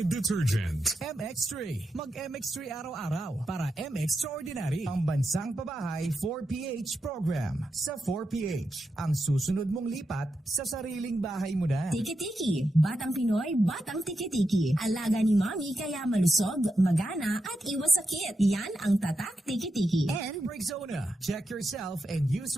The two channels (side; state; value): both; normal; correlation 0.87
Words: detergent. MX3. Mag-MX3 araw-araw para M-Extraordinary. Ang bansang pabahay 4PH program. Sa 4PH, ang susunod mong lipat sa sariling bahay mo na. Tiki-tiki. Batang Pinoy, batang tiki-tiki. Alaga ni Mami kaya malusog, magana at iwas sakit. Yan ang tatak tiki-tiki. And Rexona. Check yourself and use